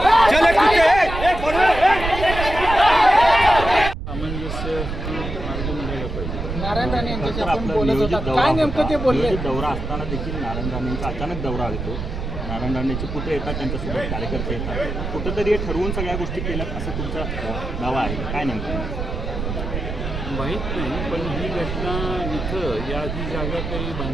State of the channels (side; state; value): right; noise; rumble, 5 dB below the sound